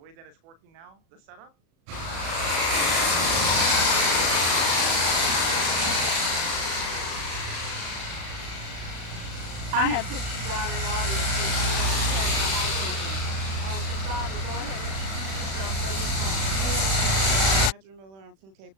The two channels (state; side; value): late; left; 36 ms